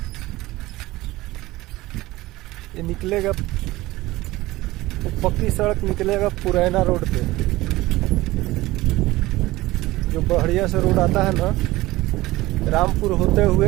ये निकलेगा, पक्की सड़क निकलेगा पुरैना रोड पे। जो बढ़िया से रोड आता है ना, रामपुर होते हुए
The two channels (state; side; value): quieter; left; 18.5 dB